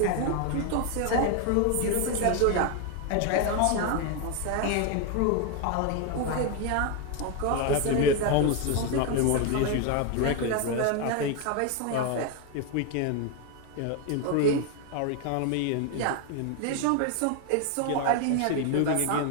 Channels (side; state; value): both; different; correlation 0.01